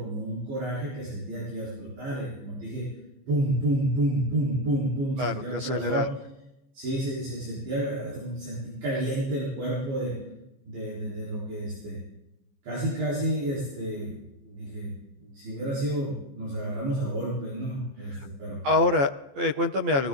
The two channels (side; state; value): left; late; 15 ms